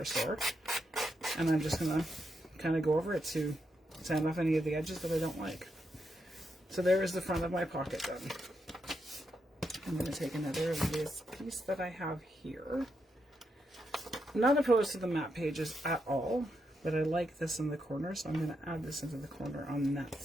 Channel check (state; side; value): normal; both; correlation 0.82